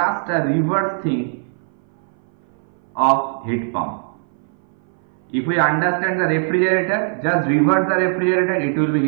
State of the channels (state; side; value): silent; left; 58 dB below the other